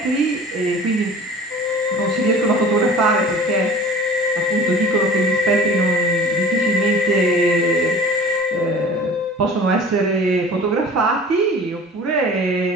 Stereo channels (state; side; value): normal; both; correlation 0.42